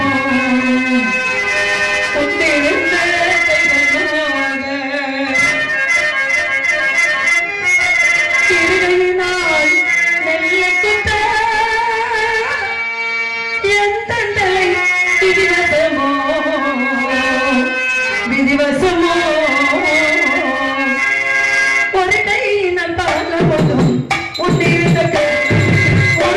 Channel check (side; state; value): both; identical; correlation 1.00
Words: கொண்டிருந்த கைகளாக, இருகையினால் நெல்லைக்குத்த என் தந்தை விதிவசமோ விதிவசமோ, ஒரு கையினால் பாலவதும் உன்னிருந்த